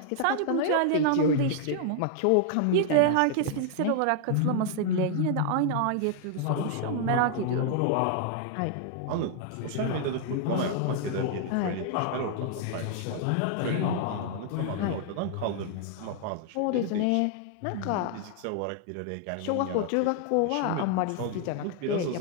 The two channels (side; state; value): both; different; correlation 0.00